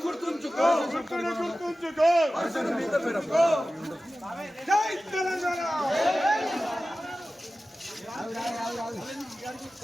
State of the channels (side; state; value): both; normal; correlation 0.95